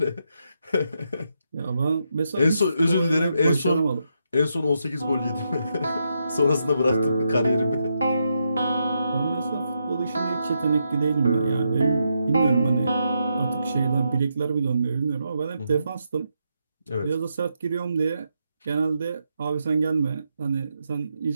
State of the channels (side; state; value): both; inverted; correlation -0.82